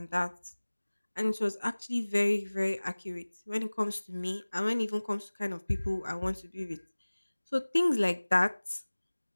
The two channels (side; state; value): both; inverted; correlation -1.00